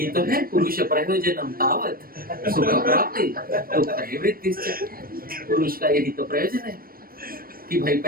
तो है पुरुष प्रयोजनम तावत सुख प्राप्ति दुख निवृत्तिश्च। पुरुष का यही तो प्रयोजन है कि भाई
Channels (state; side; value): late; left; 0.43 ms